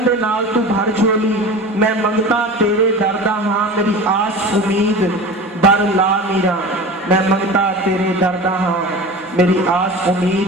दे नाल तू भर झोली। मैं मंगता तेरे दरदा हां मेरी आस उम्मीद बर ला मीरा। मैं मंगता तेरे दरदा हां मेरी आस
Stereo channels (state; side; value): normal; both; correlation 0.34